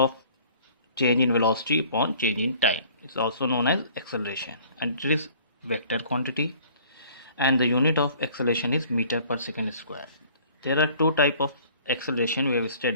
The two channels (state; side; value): inverted; both; correlation -0.53